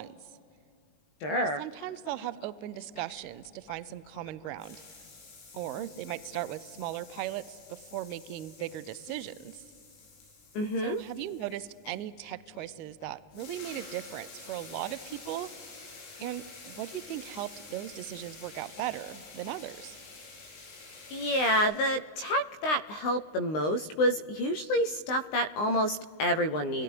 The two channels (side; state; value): right; late; 19 ms